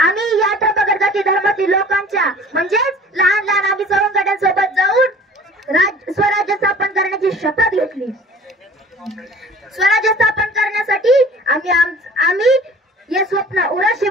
या डबागर जाती धर्मातील लोकांच्या म्हणजेच लहान आम्ही सवंगड्यांसोबत जाऊन स्वराज्य स्थापन करण्याची शपथ घेतली। स्वराज्य स्थापन करण्यासाठी आम्ही हे स्वप्न उराशी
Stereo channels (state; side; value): normal; both; correlation 0.47